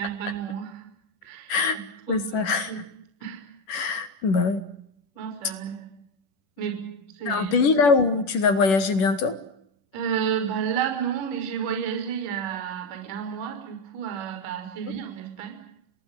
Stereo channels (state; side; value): late; right; 10 ms